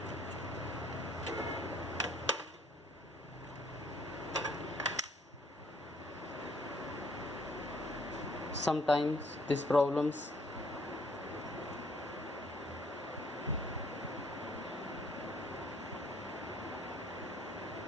Sometimes these problems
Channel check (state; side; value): normal; both; correlation 0.63